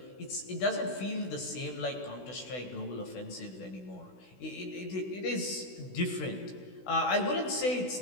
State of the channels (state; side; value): late; right; 16 ms